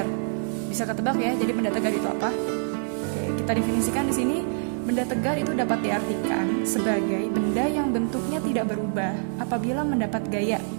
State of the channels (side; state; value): left; silent; digital silence